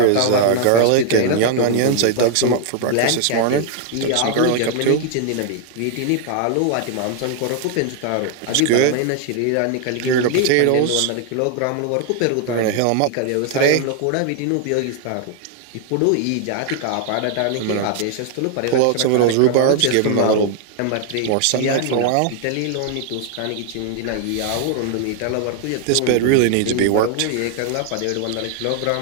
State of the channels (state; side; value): different; both; correlation 0.00